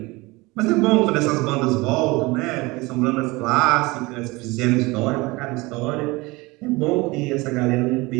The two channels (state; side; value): quieter; left; 23.0 dB